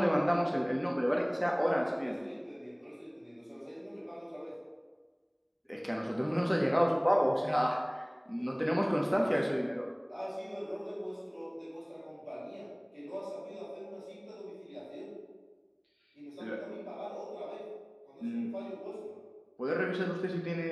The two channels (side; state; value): both; identical; correlation 1.00